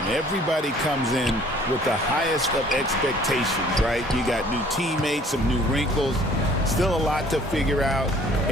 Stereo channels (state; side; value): normal; both; correlation 0.56